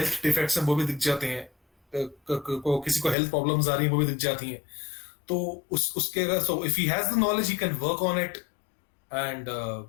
डिफेक्ट्स हैं वो भी दिख जाते हैं, किसी को हेल्थ प्रॉब्लम्स आ रही हैं वो भी दिख जाती हैं, तो उसके अगर, so if he has the knowledge he can work on it and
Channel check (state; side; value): drops out; right; at 3.2 s